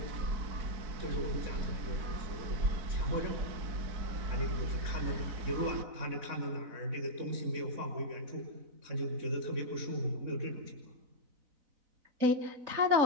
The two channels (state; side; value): late; left; 4.0 ms